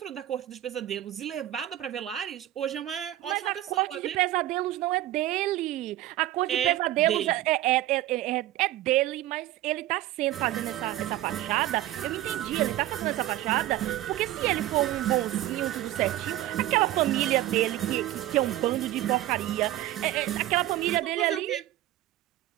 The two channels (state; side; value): quieter; left; 14.5 dB